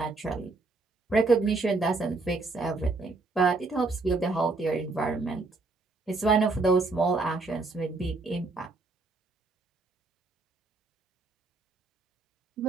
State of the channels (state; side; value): quieter; left; 3.5 dB